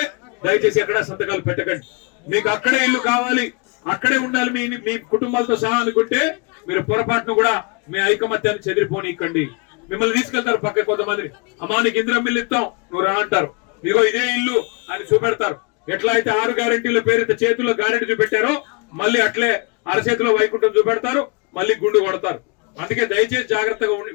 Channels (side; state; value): right; quieter; 31.7 dB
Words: దయచేసి ఎక్కడ సంతకాలు పెట్టకండి. మీకు అక్కడే ఇల్లు కావాలి, అక్కడే ఉండాలి మీ కుటుంబాలతో సహా అనుకుంటే మీరు పొరపాటును కూడా మీ ఐకమత్యాన్ని చెదిరిపోనికండి. మిమ్మల్ని తీసుకెళ్తారు పక్క కొంతమంది, అమ్మా నీకు ఇందిరమ్మ ఇల్లు ఇస్తాం, నువ్వు రా అంటారు. ఇదిగో ఇదే ఇల్లు అని చూపెడతారు. ఎట్లా అయితే 6 గ్యారెంటీల పేరుతో చేతుల్లో గ్యారెంటీ చూపెట్టారో మళ్ళీ అట్లే అరచేతిలో వైకుంఠం చూపెడతారు, మళ్ళీ గుండు కొడతారు. అందుకే దయచేసి జాగ్రత్తగా